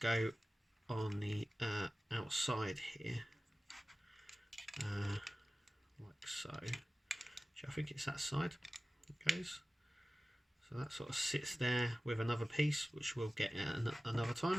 on the outside here, like so. I think it's that side it goes. So that sort of sits there with another piece, which we'll get at another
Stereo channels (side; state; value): both; normal; correlation 0.96